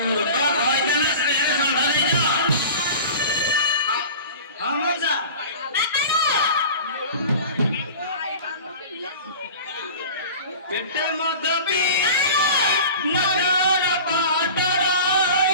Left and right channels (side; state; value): both; inverted; correlation -0.37